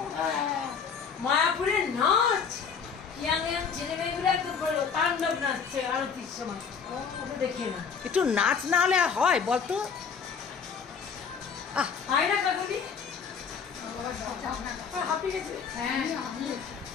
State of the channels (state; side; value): quieter; right; 6.3 dB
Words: মায়াপুরের নাচ ইয়াং ইয়াং ছেলে মেয়েগুলো একদম বলো তাণ্ডব নাচছে আরতির সময়, দেখে না একটু নাচ না হলে হয় বলতো? হয় না কাকুলি?